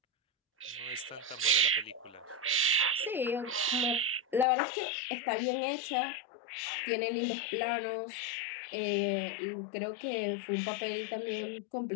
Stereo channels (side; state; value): right; drops out; at 4.5 s